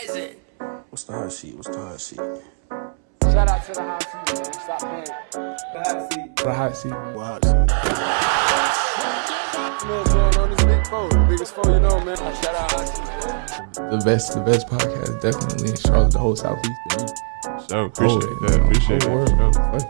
What's the hot seat? Shout out to the hot seat, man. Stop playing. The hot seat. What hot seat? You know what's going on? This big foe. The biggest foe you know, man. Shout out hot seat, man. The best podcast definitely in Charlotte, the whole Southeast. So appreciate that.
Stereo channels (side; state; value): left; silent; 65 dB below the other